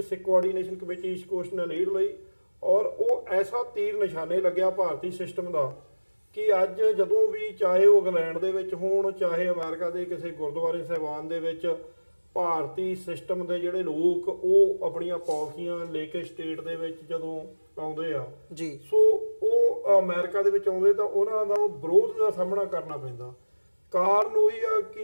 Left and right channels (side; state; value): both; inverted; correlation -1.00